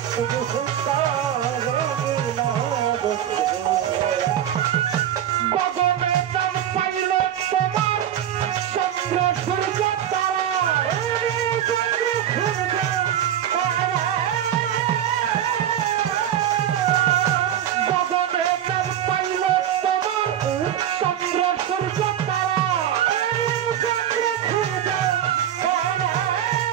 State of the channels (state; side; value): quieter; left; 10.5 dB